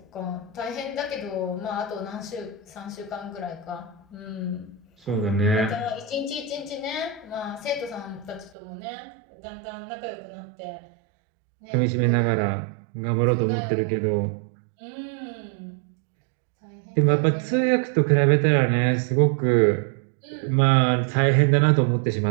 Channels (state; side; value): drops out; left; at 8.6 s